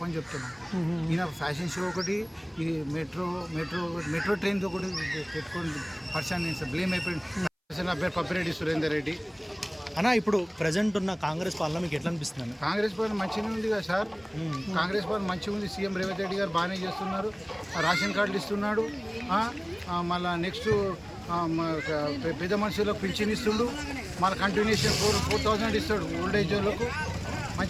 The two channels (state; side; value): identical; both; correlation 1.00